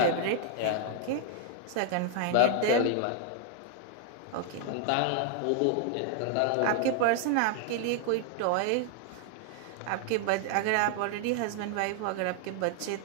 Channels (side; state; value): both; different; correlation 0.00